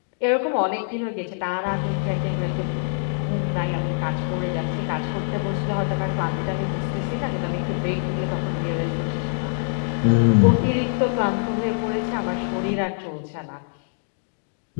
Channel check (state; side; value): silent; right; digital silence